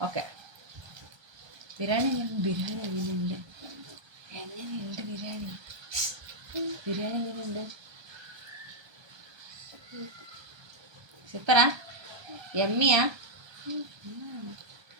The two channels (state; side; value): late; left; 1.3 ms